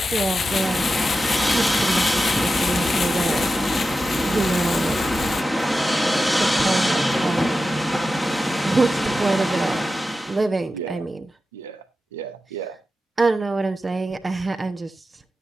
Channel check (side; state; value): both; normal; correlation 0.91